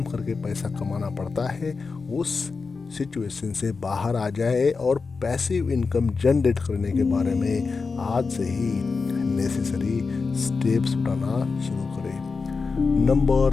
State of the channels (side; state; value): right; quieter; 4.6 dB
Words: करके पैसा कमाना पड़ता है, उस सिचुएशन से बाहर आ जाए और पैसिव इनकम जनरेट करने के बारे में आज से ही नेसेसरी स्टेप्स उठाना शुरू करें।